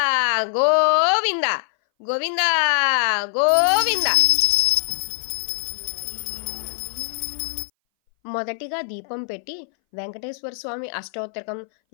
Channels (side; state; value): right; silent; 60 dB below the other